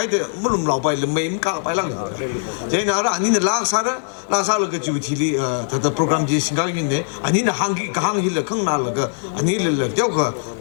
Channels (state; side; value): silent; right; digital silence